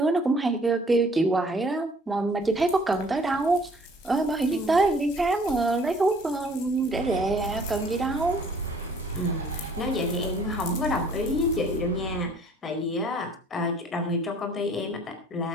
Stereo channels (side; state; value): both; normal; correlation 0.56